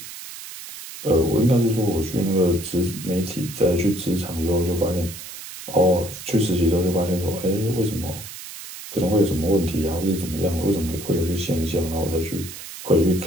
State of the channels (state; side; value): noise; right; hiss, 12 dB below the sound